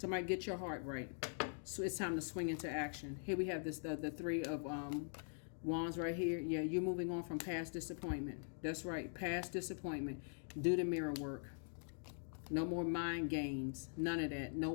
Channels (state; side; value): silent; right; digital silence